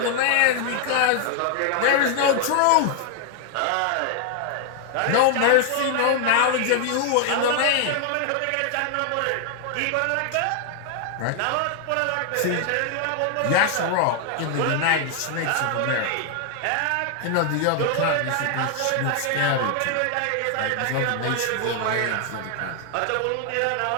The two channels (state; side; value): different; both; correlation 0.00